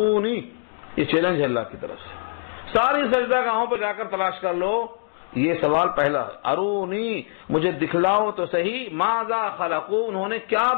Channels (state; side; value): silent; right; digital silence